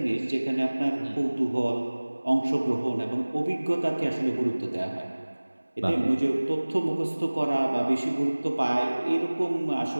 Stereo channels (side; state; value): both; inverted; correlation -1.00